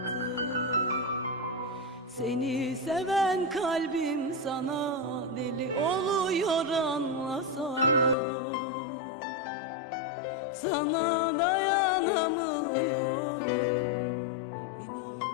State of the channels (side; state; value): right; drops out; at 8.2 s